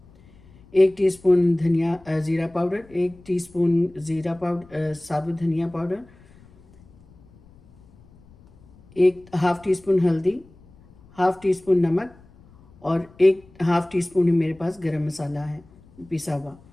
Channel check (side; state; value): left; noise; rumble, 26 dB below the sound